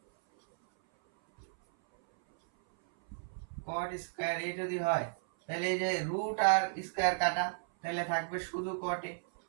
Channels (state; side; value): silent; left; 55 dB below the other